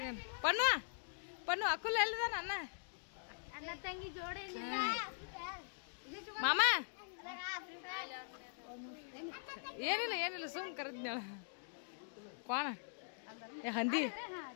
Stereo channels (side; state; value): right; silent; digital silence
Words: ಪಣ್ಣು ಪಣ್ಣು ಅಕ್ಕುಲ್ ಎಲ್ಲಿದಾನ ಅಣ್ಣ ಮಾಮ ಏನಿಲ್ಲ ಏನಿಲ್ಲ ಸುಮ್ ಕರೆದ್ನಾಳ ಕೋಣ ಏ ಹಂದಿ